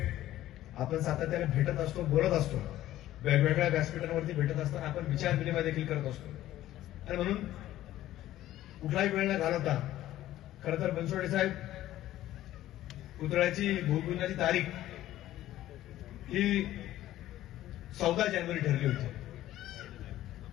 आपण सातत्याने भेटत असतो, बोलत असतो, वेगवेगळ्या व्यासपीठांवरती भेटत असताना आपण विचार विनिमय देखील करत असतो। आणि म्हणून कुठलाही वेळ न घालवता खरं तर बनसोडे साहेब पुतळ्याची भूमिपूजनाची तारीख ही 14 जानेवारी ठरली होती।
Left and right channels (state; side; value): quieter; right; 14.1 dB